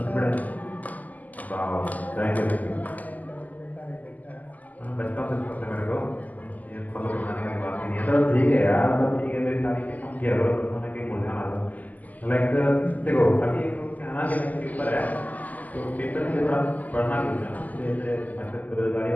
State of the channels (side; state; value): right; late; 0.079 ms